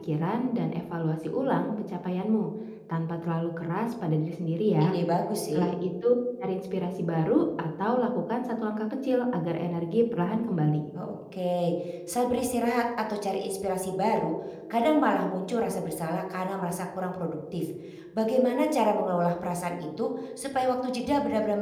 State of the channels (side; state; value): both; identical; correlation 1.00